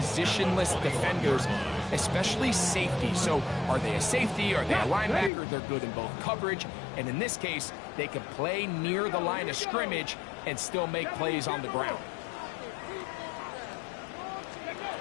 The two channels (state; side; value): drops out; right; at 5.3 s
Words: defenders, especially safety. So are they a safety? Are they a linebacker? They're good in both coverage. And in this case, they can play near the line of scrimmage and still make plays on the ground.